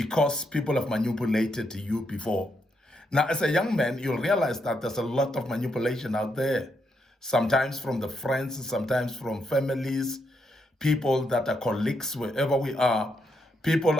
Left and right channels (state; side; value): normal; both; correlation 0.79